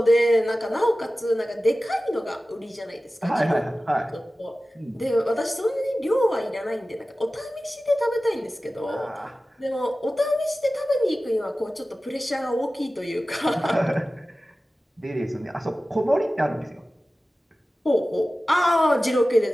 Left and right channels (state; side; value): normal; both; correlation 0.96